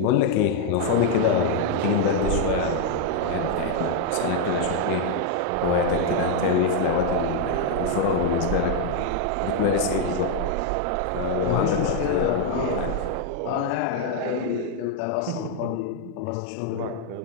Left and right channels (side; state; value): both; different; correlation 0.00